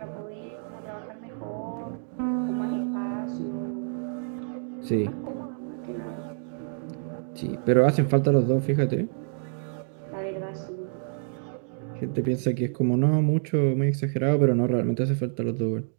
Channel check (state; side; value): silent; left; digital silence